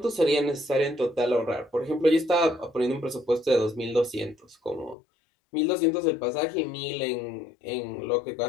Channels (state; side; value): drops out; right; at 5.0 s